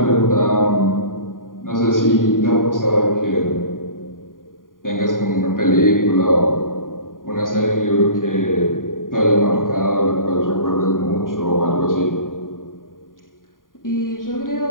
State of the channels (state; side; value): late; right; 0.90 ms